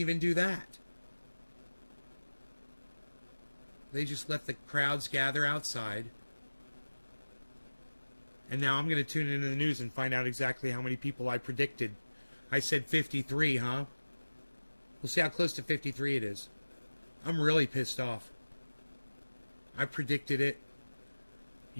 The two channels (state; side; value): inverted; both; correlation -1.00